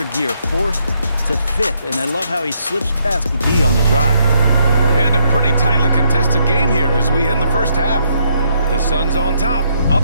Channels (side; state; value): both; inverted; correlation -0.74